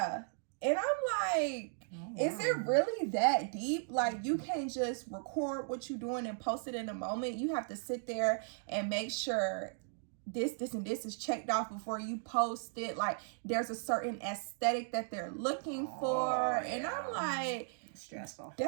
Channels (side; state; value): left; silent; digital silence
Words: And I'm like, is it really that deep? Like, you can't just record what you're doing and post it in a moment. You have to sit there and make sure this, and this is checked off before you post it. Like, there's a certain aesthetic that they're looking for. And I'm like, stressful.